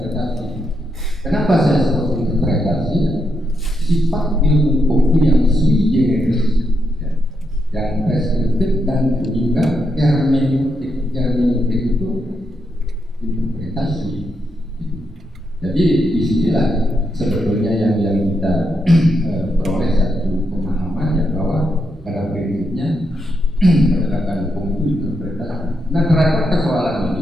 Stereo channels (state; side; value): normal; both; correlation 0.82